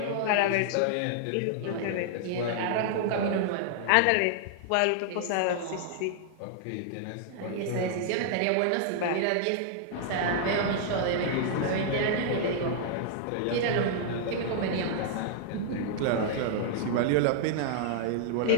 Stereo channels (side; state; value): both; different; correlation -0.01